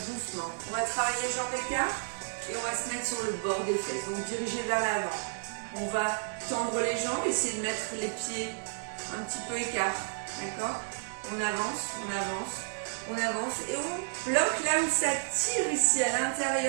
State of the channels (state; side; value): silent; left; 57 dB below the other